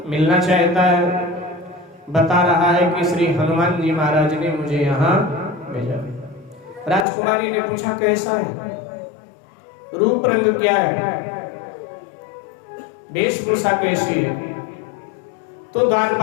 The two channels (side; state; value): right; drops out; at 7.1 s